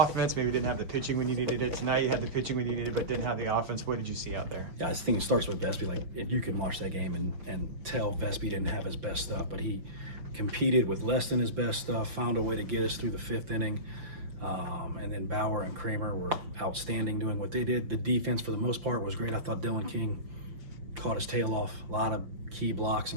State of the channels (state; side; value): late; left; 6.1 ms